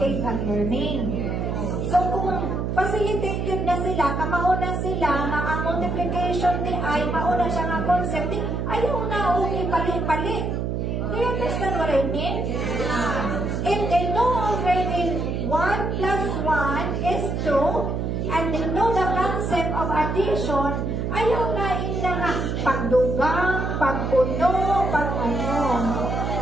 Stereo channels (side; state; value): right; noise; hum, 1 dB below the sound